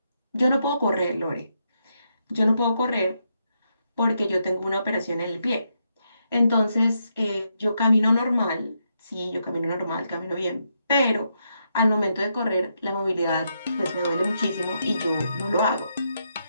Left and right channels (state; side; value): inverted; both; correlation -0.80